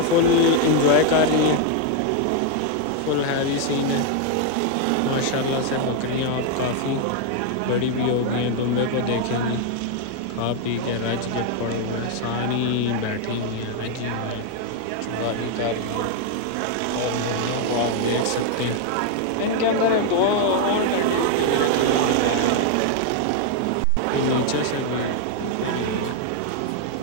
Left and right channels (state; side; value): different; both; correlation 0.01